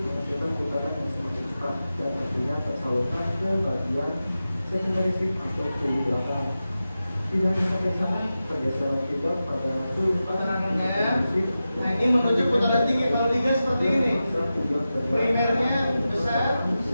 menghasilkan putaran yang semakin cepat dan tentunya tersalurkan ke bagian secondary shift atau kulit belakang. Tidak hanya sampai sana, pergeseran juga pada kulit Putarannya. Nah, ini menuju putaran tinggi. Kalau digas seperti ini, primernya besar,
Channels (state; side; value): inverted; both; correlation -0.93